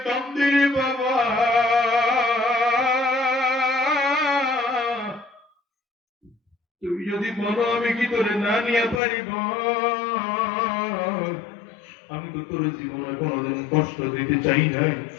কান্দে রে বাবা। তুমি যদি বলো আমি কি তোরে না নিয়ে পারিব? আমি তো তোর জীবনে কোনোদিন কষ্ট দিতে চাই নাই।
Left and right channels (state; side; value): drops out; right; at 9.0 s